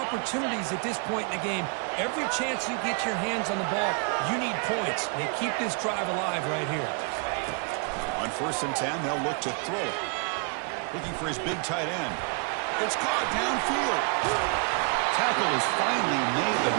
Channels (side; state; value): left; quieter; 37.2 dB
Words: at this point in the game. Every chance you get your hands on the ball, you need points. They keep this drive alive right here. On 1st and 10, they'll look to throw it. Looking for his big tight end. It's caught downfield. Tackle is finally made, but